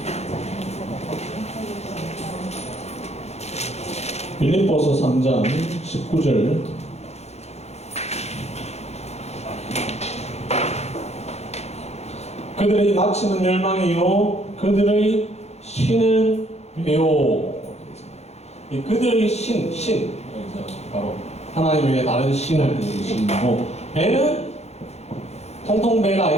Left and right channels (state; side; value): late; right; 0.31 ms